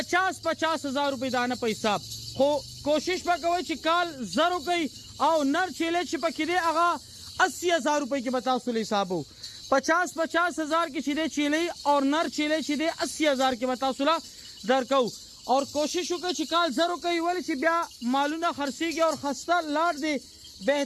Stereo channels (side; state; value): both; identical; correlation 1.00